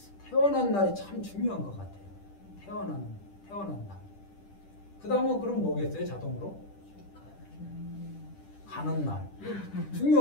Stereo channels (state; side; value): late; right; 10 ms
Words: 태어난 날이 참 중요한 것 같아요. 태어난 날. 그 다음은 그럼 뭐겠어요? 자동으로? 가는 날.